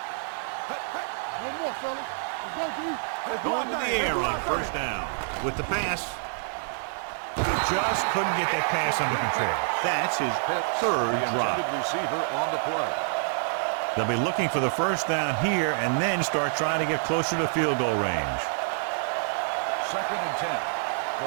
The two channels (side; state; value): left; silent; digital silence